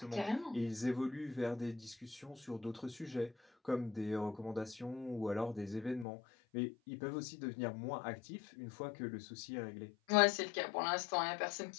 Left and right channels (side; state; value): right; drops out; at 6.1 s